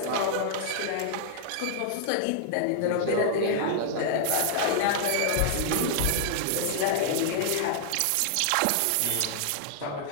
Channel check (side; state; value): both; different; correlation -0.01